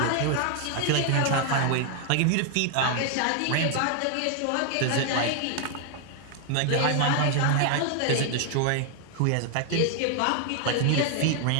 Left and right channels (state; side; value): different; both; correlation 0.00